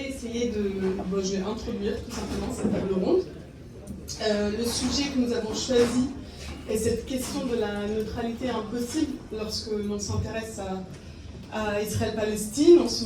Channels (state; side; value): identical; both; correlation 1.00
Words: essayer je vais introduire tout simplement cette table ronde. Le sujet que nous avons choisi est cette question de la neutralité impossible lorsque l'on s'intéresse à Israël-Palestine, en ce